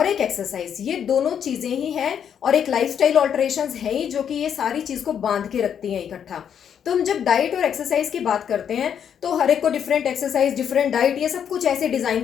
एक एक्सरसाइज। ये दोनों चीजें ही हैं और एक लाइफस्टाइल ऑल्टरेशंस है ही जो कि ये सारी चीज को बांध के रखती हैं इकट्ठा। तो हम जब डाइट और एक्सरसाइज की बात करते हैं तो हर एक को डिफरेंट एक्सरसाइज, डिफरेंट डाइट, ये सब कुछ ऐसे डिजाइन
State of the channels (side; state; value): right; quieter; 8.4 dB